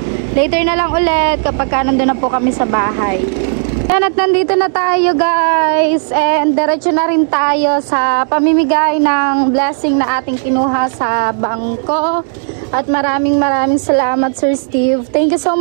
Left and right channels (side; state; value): left; silent; digital silence